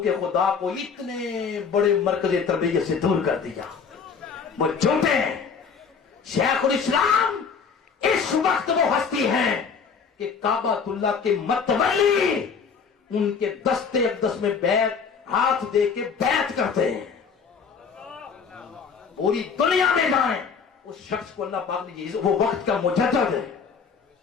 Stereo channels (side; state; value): right; quieter; 5.9 dB